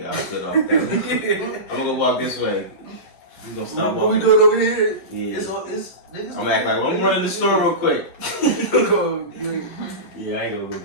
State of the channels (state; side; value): late; right; 11 ms